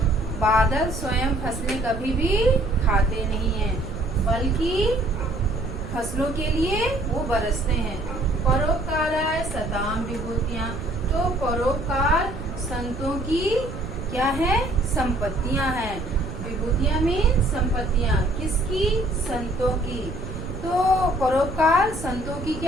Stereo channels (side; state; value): right; noise; rumble, 9 dB below the sound